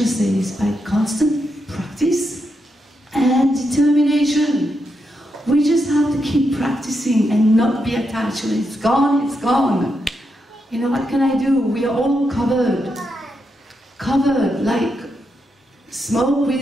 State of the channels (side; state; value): both; normal; correlation 0.83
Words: says, by constant practice and determination, we just have to keep practicing and not be attached. When it's gone, it's gone. You know, what can I do? We are all covered like smoke